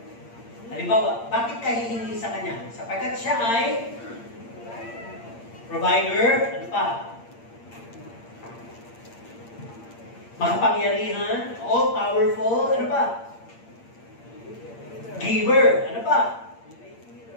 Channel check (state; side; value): late; right; 8.7 ms